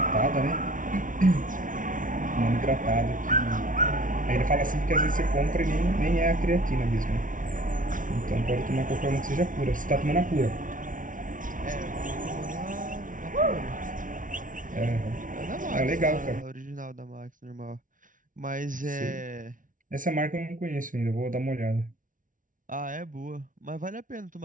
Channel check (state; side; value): late; left; 0.38 ms